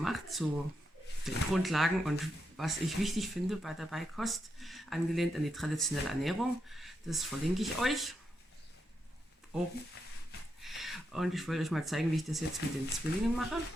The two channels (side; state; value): both; normal; correlation 0.84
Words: zu den Grundlagen und was ich wichtig finde bei der Beikost, angelehnt an die traditionelle Ernährung. Das verlinke ich euch oben. Und ich wollte euch mal zeigen, wie ich das jetzt mit den Zwillingen mache.